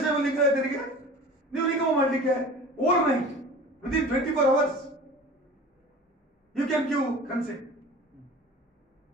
ಲಿಂಗಾಯತರಿಗೆ ನೀವು ನಿಗಮ ಮಾಡಲಿಕ್ಕೆ over night within 24 hours you can give consent,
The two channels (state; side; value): normal; both; correlation 0.40